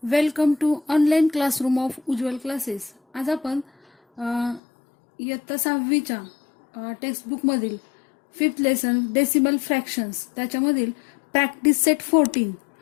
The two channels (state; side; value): drops out; right; at 4.6 s